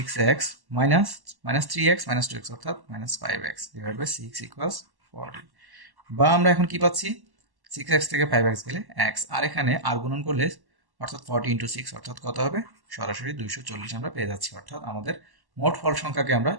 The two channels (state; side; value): late; left; 1.1 ms